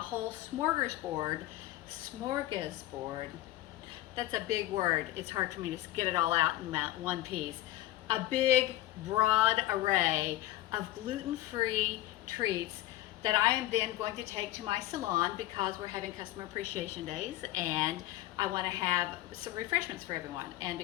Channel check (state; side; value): quieter; right; 15.5 dB